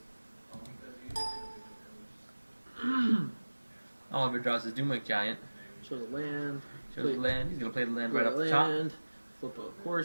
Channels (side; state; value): both; inverted; correlation -1.00